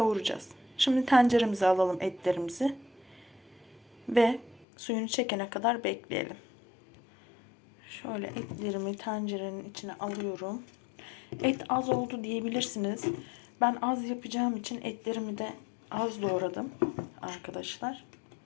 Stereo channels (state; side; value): drops out; right; at 4.7 s